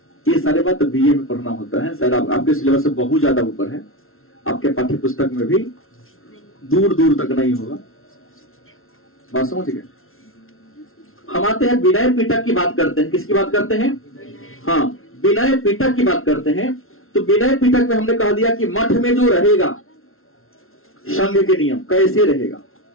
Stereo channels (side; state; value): right; late; 0.62 ms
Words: ये सारे बात बीए में पढ़ना होता है। शायद आपके सिलेबस से बहुत ज्यादा ऊपर है। आपके पाठ्य पुस्तक में भी दूर दूर तक नहीं होगा। बात समझ गए? हम आते हैं विनय पीटक की बात करते हैं। किसकी बात करते हैं? हाँ, विनय पीटक की बात करते हैं। तो विनय पीटक में हमने कह दिया कि मठ में जो रहेगा, संघ के नियम कैसे रहेगा।